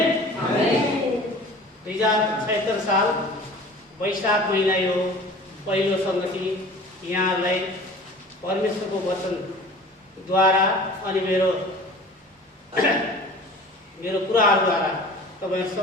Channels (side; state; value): both; normal; correlation 0.43